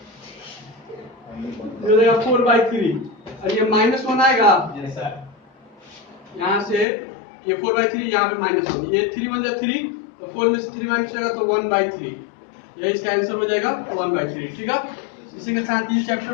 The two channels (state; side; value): drops out; right; at 6.9 s